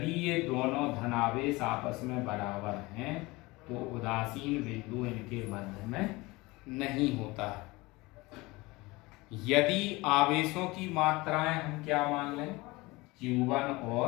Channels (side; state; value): right; quieter; 22.3 dB